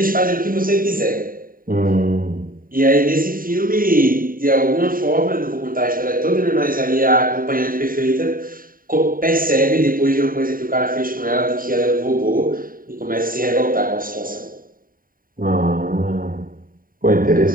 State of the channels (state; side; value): late; left; 0.41 ms